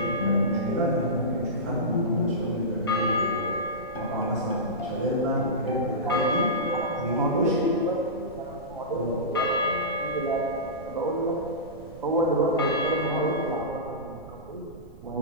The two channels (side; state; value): right; noise; rumble, 18 dB below the sound